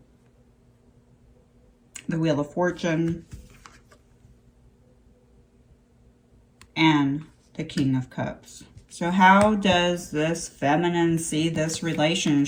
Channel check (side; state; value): both; identical; correlation 1.00